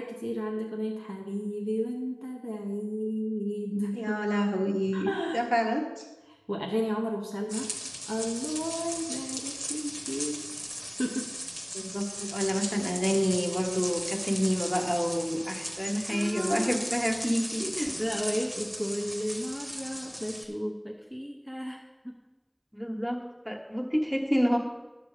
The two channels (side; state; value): both; identical; correlation 1.00